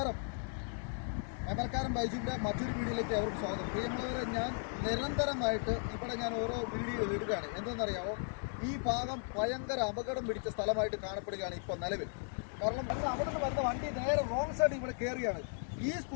മേമൽക്കാരൻ ബൈജുവിൻ്റെ മറ്റൊരു വീഡിയോയിലേക്ക് അവർക്ക് സ്വാഗതം. പ്രിയമുള്ളവരെ, ഞാൻ നിരന്തരമായിട്ട് ഇവിടെ ഞാൻ ഓരോ വീഡിയോ ഇടുകയാണ്. എന്തെന്നറിയാമോ, ഈ ഭാഗം ഭയങ്കര അപകടം പിടിച്ച സ്ഥലമായിട്ട് കാണപ്പെടുകയാണ് ഇപ്പോൾ നിലവിൽ. കാരണം അവിടെ നിന്ന് വരുന്ന വണ്ടി നേരെ റോങ് സൈഡ് ഇവിടെ കയറിയാണ്. ഈ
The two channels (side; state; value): right; silent; 54 dB below the other